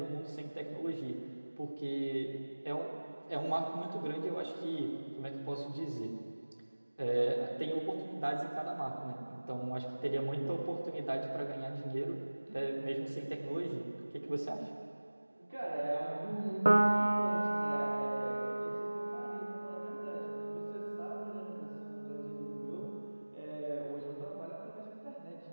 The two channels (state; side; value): inverted; both; correlation -1.00